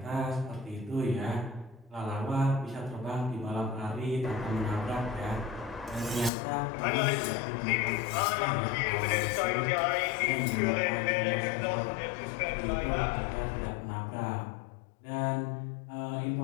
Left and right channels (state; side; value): drops out; right; at 6.3 s